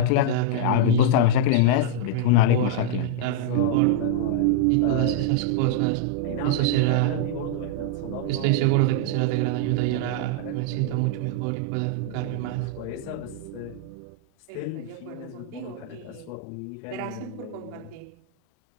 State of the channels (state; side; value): different; both; correlation -0.01